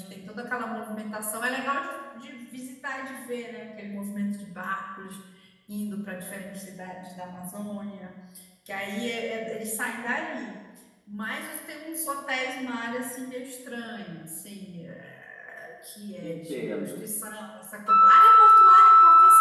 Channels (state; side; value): identical; both; correlation 1.00